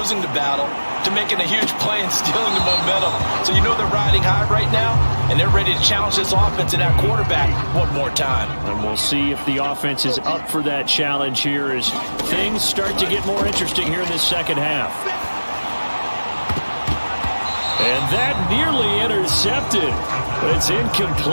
the battle to making a huge play and stealing the momentum. So you know they're riding high right now, and they're ready to challenge this offense and that quarterback one more time. And we'll see if the offense is up for that challenge here as things start to get more interesting here in this second half. And that nearly intercepted, but it's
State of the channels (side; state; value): both; inverted; correlation -1.00